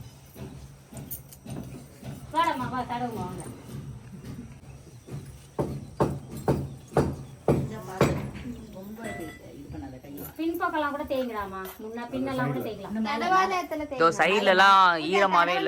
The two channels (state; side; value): identical; both; correlation 1.00